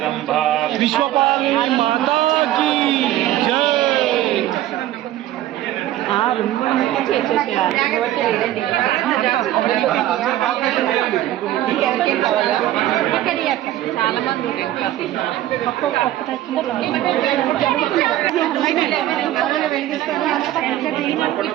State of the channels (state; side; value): quieter; left; 13.8 dB